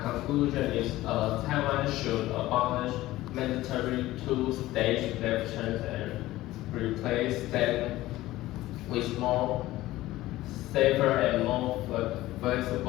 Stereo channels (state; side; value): quieter; right; 16.6 dB